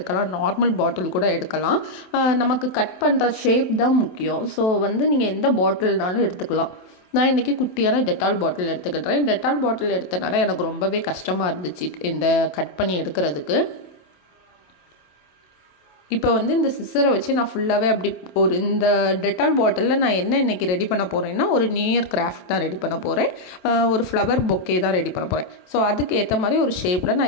நார்மல் பாட்டில் கூட எடுக்கலாம். நமக்கு கட் பண்ணுற ஷேப் தான் முக்கியம். ஸோ நீங்கள் எந்த பாட்டில்னாலும் எடுத்துக்கலாம். நான் இன்றைக்கி குட்டியான டெட்டால் பாட்டில் எடுத்துக்கிட்டேன். டெட்டால் பாட்டில் எடுத்தனால எனக்கு ரொம்பவே கஷ்டமாக இருந்துச்சு இந்த கட் பண்ணி எடுக்கிறதுக்கு. இப்போ இந்த சிசரை வச்சு நான் ஃபுல்லாகவே அப்படி இந்த டெட்டால் பாட்டிலில் நான் என்ன இன்றைக்கி ரெடி பண்ண போகிறேன்னா, ஒரு நியூ இயர் கிராஃப்ட் தான் ரெடி பண்ண போகிறேன். ஒரு ஃப்ளவர் பொக்கே தான் ரெடி பண்ண போகிறேன். ஸோ அதுக்கு ஏற்ற மாதிரி ஒரு ஷேப்பில்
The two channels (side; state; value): right; late; 27 ms